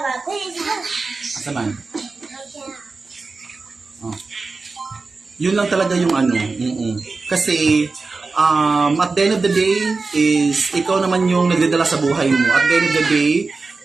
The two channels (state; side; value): quieter; left; 4.0 dB